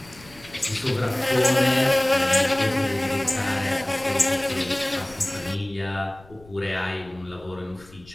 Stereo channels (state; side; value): noise; left; rumble, 24 dB below the sound